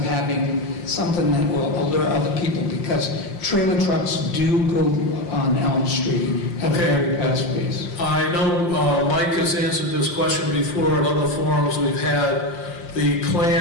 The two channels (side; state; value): right; late; 5.7 ms